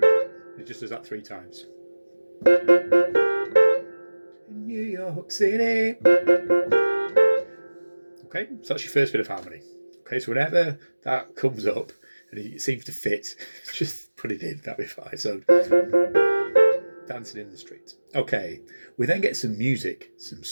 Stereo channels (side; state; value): both; inverted; correlation -1.00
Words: it just does that 3 times. In New York City. Okay, so that's your first bit of harmony. Okay, so whenever that comes up and it seems to fit, just put it in, that'll be fine. So, dancing in the street. Okay, we then get some music, some